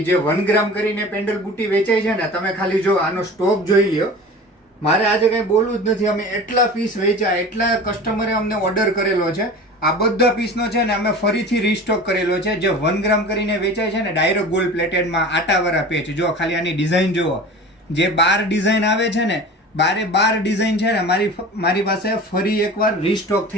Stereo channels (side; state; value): both; normal; correlation 0.37